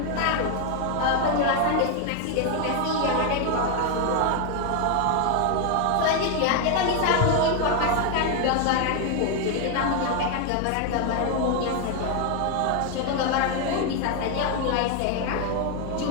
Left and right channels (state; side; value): different; both; correlation 0.01